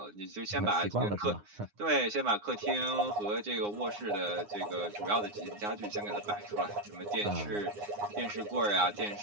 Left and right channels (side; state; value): left; late; 9.7 ms